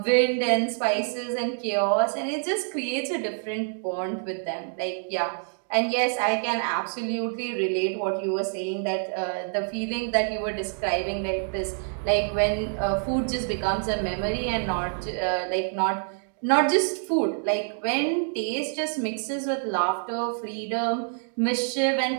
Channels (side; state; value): left; silent; 60 dB below the other